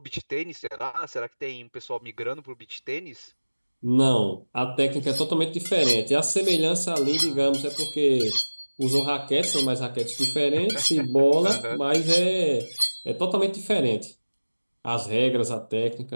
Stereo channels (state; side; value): inverted; both; correlation -1.00